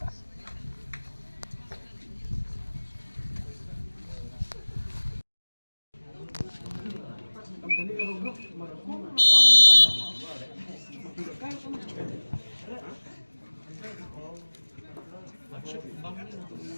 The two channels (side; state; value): both; inverted; correlation -1.00